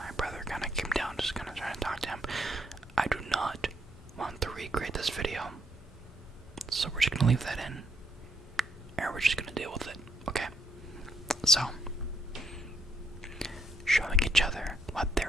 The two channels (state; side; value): normal; both; correlation 0.74